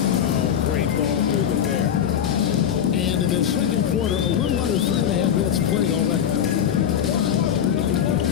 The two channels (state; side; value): quieter; right; 9.1 dB